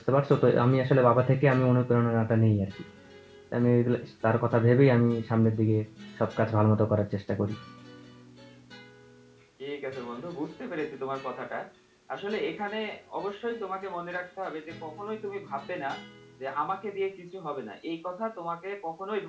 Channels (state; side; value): identical; both; correlation 1.00